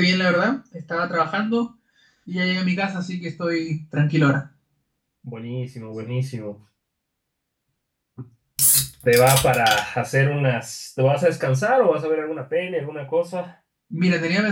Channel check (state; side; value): identical; both; correlation 1.00